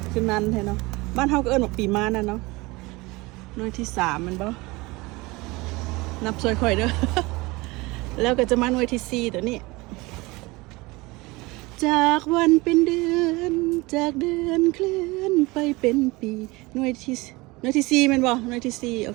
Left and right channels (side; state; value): left; quieter; 23.0 dB